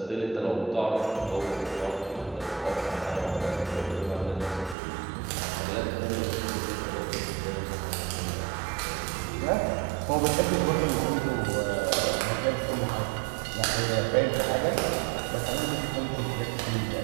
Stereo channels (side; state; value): left; drops out; at 4.8 s